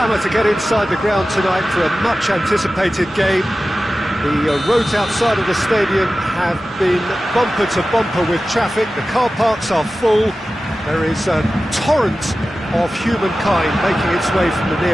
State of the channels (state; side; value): normal; both; correlation 0.95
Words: to get inside the ground tonight for a much-anticipated game. The roads outside of the stadium have been bumper to bumper with traffic. The car parks are full. There is a torrent of humankind making its way from the